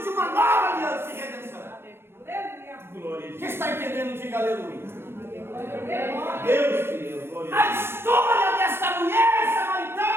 de uma nova aliança e redenção. Glória. Quem está entendendo, diga aleluia. Deus, Deus, glória. A história desta mulher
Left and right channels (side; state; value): left; late; 0.12 ms